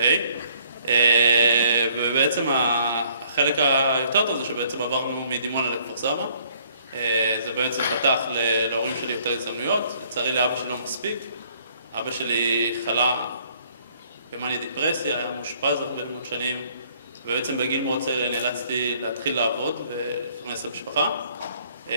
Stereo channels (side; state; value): both; inverted; correlation -0.62